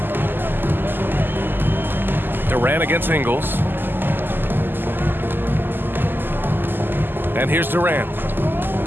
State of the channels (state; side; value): late; left; 0.094 ms